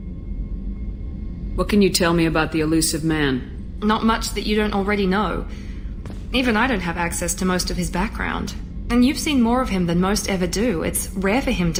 What can you tell me about the Elusive Man? Not much that you don't already know. Even I don't have access to most of his background. And you've seen more of him than most ever do. It's rare for him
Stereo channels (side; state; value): both; identical; correlation 1.00